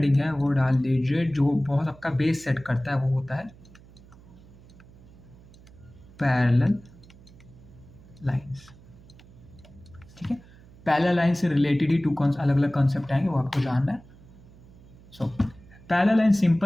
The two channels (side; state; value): right; noise; hum, 23 dB below the sound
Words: है वो डाल लीजिए, जो बहुत आपका बेस सेट करता है वो होता है पैरेलल लाइंस। ठीक है, पैरेलल लाइन से रिलेटेड ही अलग अलग कॉन्सेप्ट आएंगे, वो आपको जानना है। सो पैरेलल लाइन